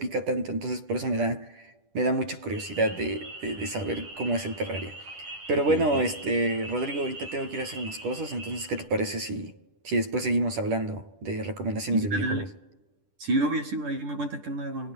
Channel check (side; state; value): left; late; 10 ms